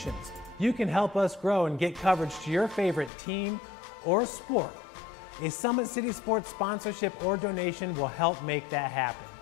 You can help us grow and get coverage to your favorite team or sport. A Summit City Sports sponsorship or donation will help make that happen.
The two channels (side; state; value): right; drops out; at 3.1 s